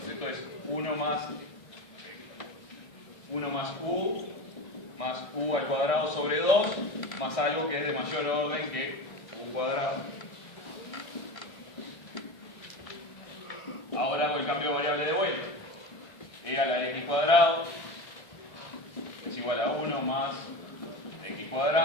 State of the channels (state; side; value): late; right; 1.6 ms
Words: Esto es 1 más u al cuadrado sobre 2 más algo que es de mayor orden que u cuadrado. Ahora hago el cambio de variable de vuelta. E a la x cuadrado es igual a 1 más x